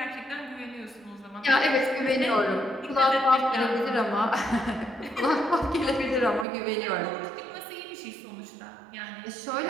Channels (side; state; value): left; drops out; at 6.5 s